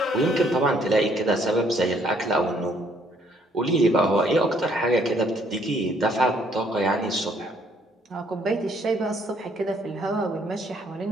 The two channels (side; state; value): both; normal; correlation 0.66